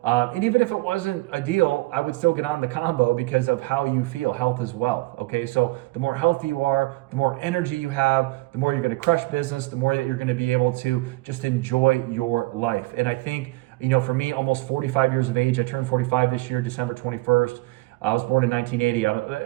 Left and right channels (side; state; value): left; quieter; 21.6 dB